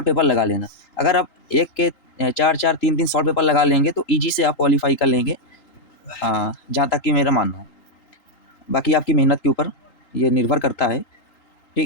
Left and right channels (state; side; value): late; right; 3.8 ms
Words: पेपर लगा लेना। अगर आप एक के 4-4, 3-3 सॉल्व पेपर लगा लेंगे तो ईजी से आप क्वालिफाई कर लेंगे, जहाँ तक कि मेरा मानना है। बाकी आपकी मेहनत के ऊपर ये निर्भर करता है,